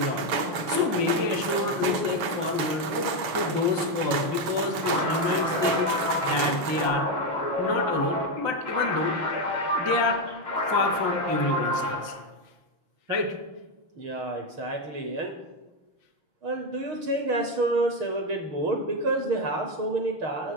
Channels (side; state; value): left; late; 6.9 ms